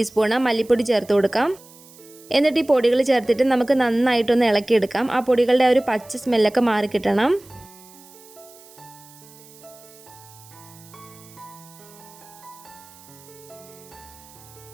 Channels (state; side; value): noise; right; hiss, 23 dB below the sound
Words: മല്ലിപ്പൊടി ചേർത്ത് കൊടുക്കാം. എന്നിട്ട് ഈ പൊടികൾ ചേർത്തിട്ട് നമുക്ക് നന്നായിട്ടൊന്ന് ഇളക്കിയെടുക്കാം. ആ പൊടികളുടെ ഒരു പച്ച സ്മെല്ലൊക്കെ മാറിക്കിട്ടണം.